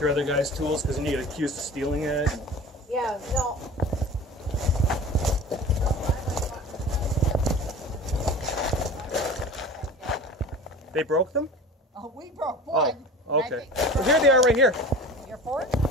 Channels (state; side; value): normal; both; correlation 0.38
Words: other guys' tools because then you get accused of stealing it. Yeah, no. They broke them? Oh, we broke one. Oh, okay. Well, here they are right here. Your fork?